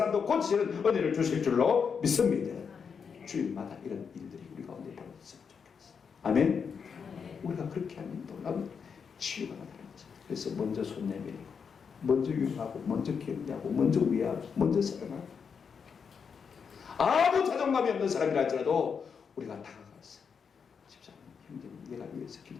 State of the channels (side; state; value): right; quieter; 6.3 dB